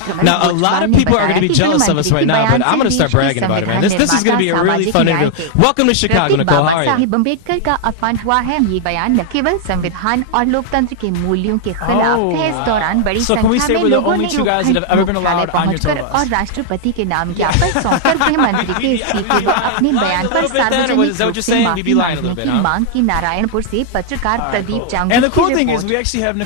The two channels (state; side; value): different; both; correlation 0.00